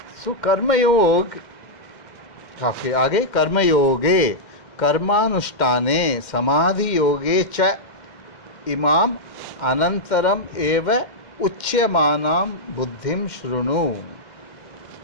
सो कर्मयोग, आपके आगे कर्मयोगे कर्मानुष्ठाने समाधि योगे च इमाम अनंतरम एव उच्यमानाम बुद्धिम शृणु।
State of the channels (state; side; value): late; right; 2.1 ms